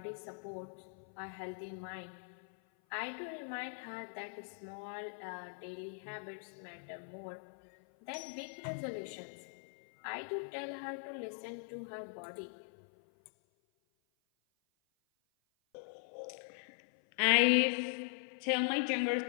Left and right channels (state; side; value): silent; right; 51 dB below the other